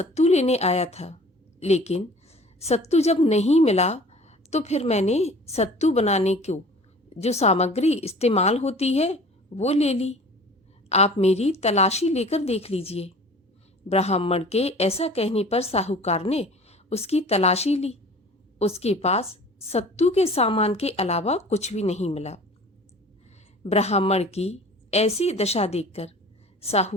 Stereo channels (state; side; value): normal; both; correlation 0.45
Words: लेने आया था, लेकिन सत्तू जब नहीं मिला तो फिर मैंने सत्तू बनाने को जो सामग्री इस्तेमाल होती है वो ले ली, आप मेरी तलाशी लेकर देख लीजिए। ब्राह्मण के ऐसा कहने पर साहूकार ने उसकी तलाशी ली। उसके पास सत्तू के सामान के अलावा कुछ भी नहीं मिला। ब्राह्मण की ऐसी दशा देखकर